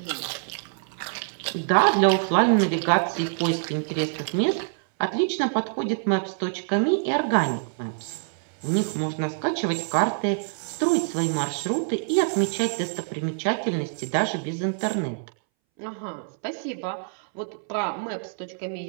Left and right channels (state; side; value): silent; left; 61 dB below the other